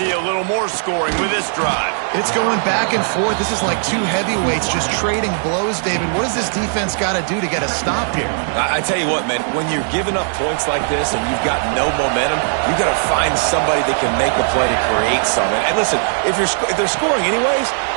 a little more scoring with this drive. It's going back and forth. This is like two heavyweights just trading blows, David. What does this defense got to do to get a stop here? I tell you what, man, when you're giving up points like this and you've got no momentum, you've got to find somebody that can make a play to create something. And listen, if they're scoring anyways,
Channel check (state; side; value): silent; left; digital silence